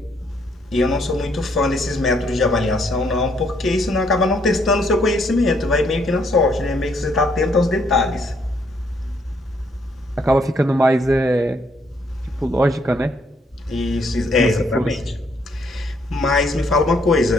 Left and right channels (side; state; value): both; normal; correlation 0.70